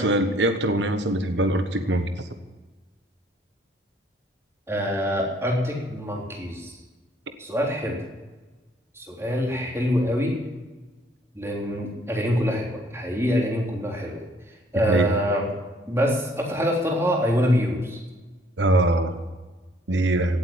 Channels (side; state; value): both; normal; correlation 0.61